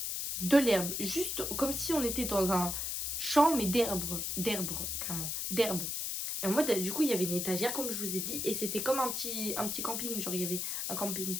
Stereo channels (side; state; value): left; noise; hiss, 2 dB below the sound